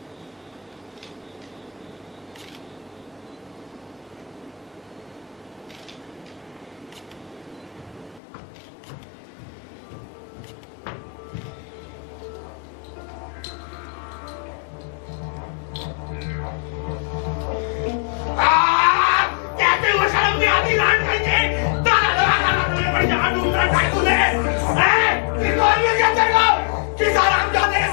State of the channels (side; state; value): right; drops out; at 8.2 s